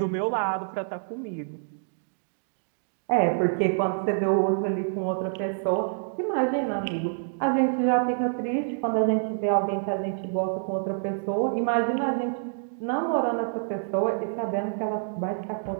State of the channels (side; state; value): left; silent; digital silence